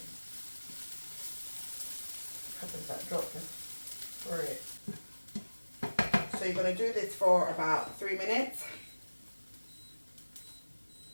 Peppers that dropped for it. So you're going to do this for about 3 minutes.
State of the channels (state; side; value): inverted; both; correlation -1.00